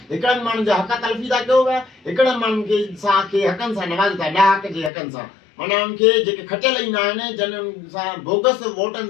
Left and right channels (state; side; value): drops out; right; at 4.9 s